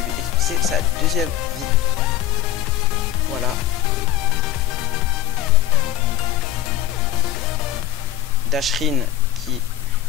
expulser sa deuxième vie. Voilà. Dashrin qui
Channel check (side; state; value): right; quieter; 12.1 dB